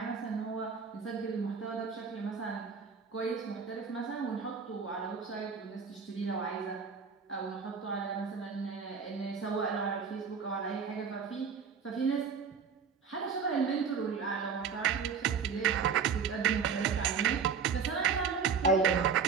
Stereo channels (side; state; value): left; quieter; 6.0 dB